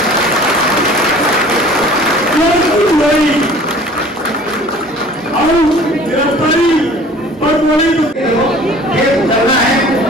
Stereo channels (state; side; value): normal; both; correlation 0.47